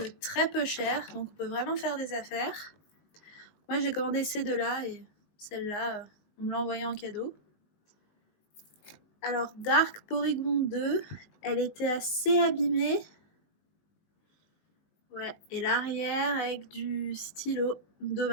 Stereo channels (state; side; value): late; right; 20 ms